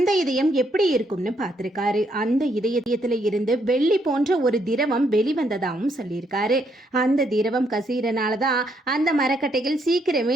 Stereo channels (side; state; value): both; normal; correlation 0.74